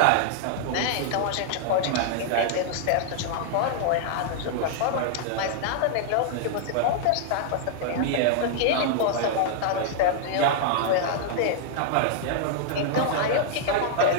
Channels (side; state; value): both; different; correlation -0.01